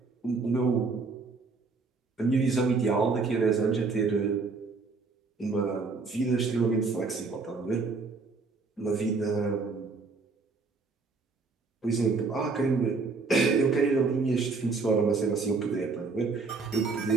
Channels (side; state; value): left; quieter; 4.2 dB